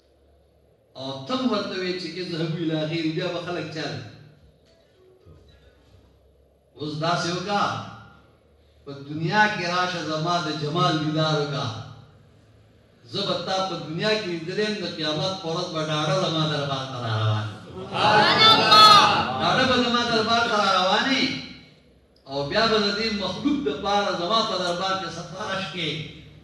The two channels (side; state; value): both; identical; correlation 1.00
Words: او تم ورته وایې چې اذهبوا الی غیر بیا به خلک چا اوس داسې وکړه په دنیا کې راشه زما د جمال دیدار وکړه زه به تا په دنیا کې لیدلی یم د قیامت په ورځ به ډاډه زما دربار ته را روان ډاډه به زما دربار ته را روانې او بیا به د دې مخلوق دپاره زما په دربار کې سفارش کې